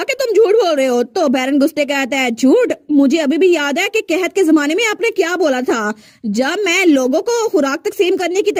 कि तुम झूठ बोल रहे हो। तो बैरन गुस्टे कहता है झूठ? मुझे अभी भी याद है कि कहत के जमाने में आपने क्या बोला था, जब मैं लोगों को खुराक तकसीम करने की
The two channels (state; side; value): identical; both; correlation 1.00